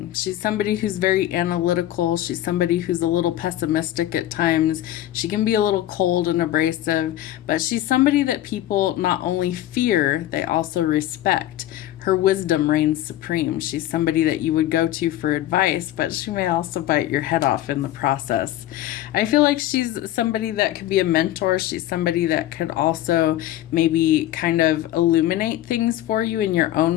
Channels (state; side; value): quieter; right; 13.6 dB